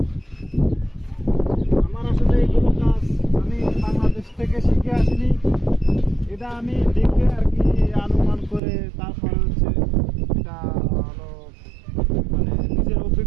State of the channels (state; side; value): drops out; left; at 8.6 s